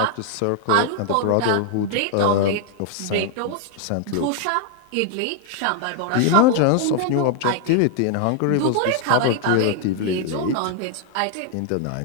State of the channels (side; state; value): both; different; correlation 0.00